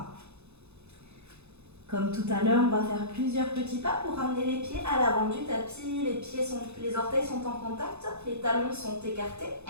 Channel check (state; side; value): late; left; 0.81 ms